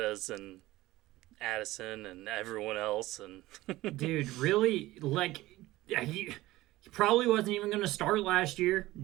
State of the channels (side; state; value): left; quieter; 17.6 dB